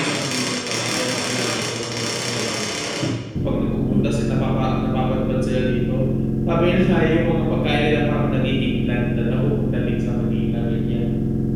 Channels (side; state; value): both; identical; correlation 1.00